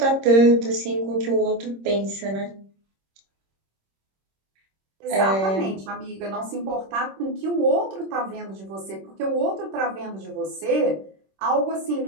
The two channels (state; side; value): late; left; 26 ms